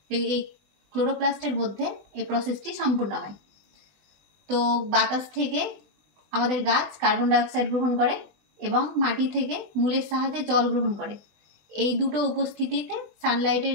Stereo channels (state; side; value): late; left; 20 ms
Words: এই ক্লোরোপ্লাস্টের মধ্যে এই প্রসেসটি সম্পূর্ণ হয়। তো বাতাস থেকে আমাদের গাছ কার্বন ডাইঅক্সাইড গ্রহণ করে এবং মাটি থেকে মূলের সাহায্যে জল গ্রহণ করে। এই দুটো উপস্থিতিতে সানলাইটের